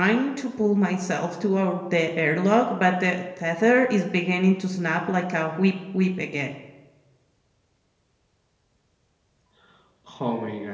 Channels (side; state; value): both; identical; correlation 1.00